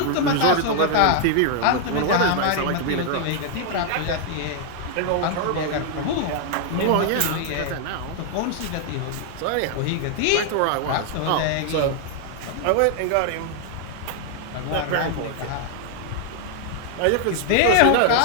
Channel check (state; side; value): different; both; correlation 0.00